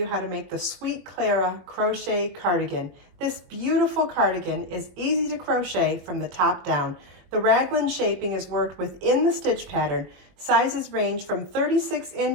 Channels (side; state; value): left; late; 21 ms